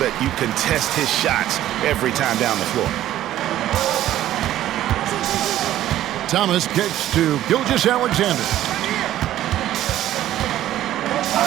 you contest his shots every time down the floor. Thomas kicks to Gilgeous-Alexander.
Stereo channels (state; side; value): quieter; left; 13.1 dB